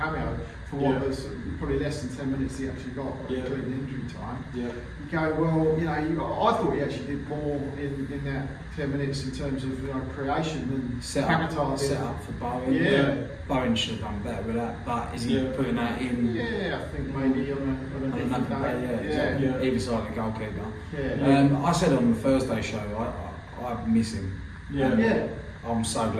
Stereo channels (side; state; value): both; identical; correlation 1.00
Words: for what Yeah. was probably less than 10 minutes he actually got, Yeah. including injury time. Yeah. You go, well, you know, I thought he actually did more in that 10 minutes in terms of creation than Set Paquetá did. up for Bowen. Yeah. Bowen should have done better with that, but is he Yeah. putting that in? Yeah, I think maybe on a On different another day. day, Yeah. exactly. Either side of the goalkeeper. Yeah. I said on the Thursday show, I miss him. Yeah. Yeah. I'm so